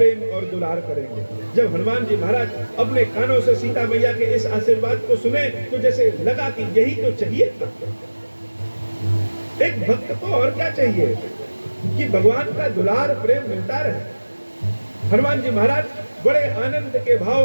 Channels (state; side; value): inverted; both; correlation -1.00